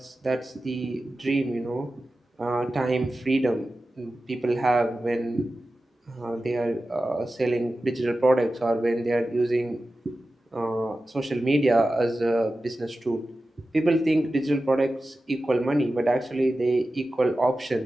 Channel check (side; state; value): both; normal; correlation 0.94